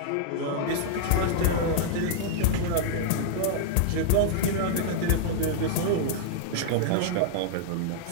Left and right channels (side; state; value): both; different; correlation -0.01